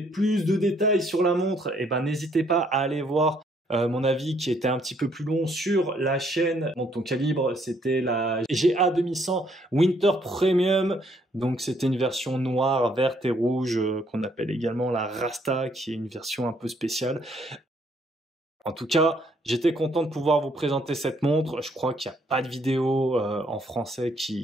de détails sur la montre, eh ben, n'hésitez pas à aller voir mon avis qui était un petit peu plus long sur la chaîne Montre ton calibre. C'était la GA 2100 Winter Premium. Donc c'était une version noire, verte et rouge qu'on appelle également la Rasta, qui est une version un peu spéciale. En tout cas, j'étais content de pouvoir vous présenter cette montre. Je crois qu'il n'y a pas de vidéo en français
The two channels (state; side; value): normal; both; correlation 0.68